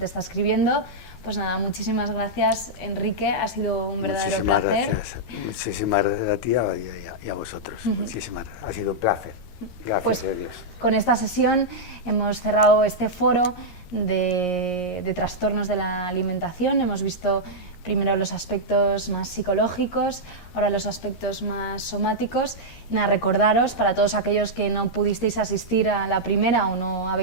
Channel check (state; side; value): late; right; 13 ms